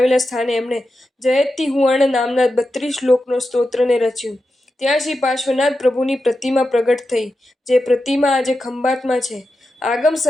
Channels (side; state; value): both; normal; correlation 0.90